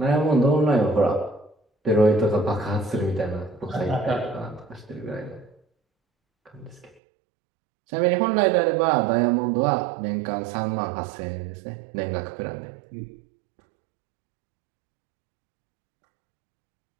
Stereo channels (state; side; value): drops out; left; at 7.0 s